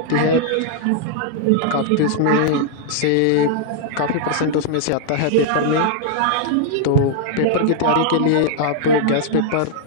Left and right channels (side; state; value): both; different; correlation -0.01